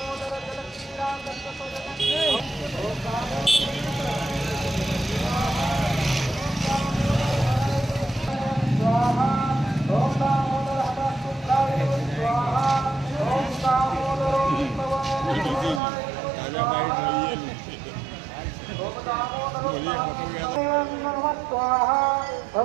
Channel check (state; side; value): drops out; left; at 15.8 s